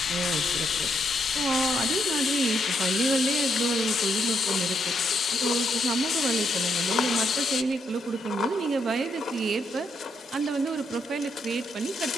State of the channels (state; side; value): normal; both; correlation 0.78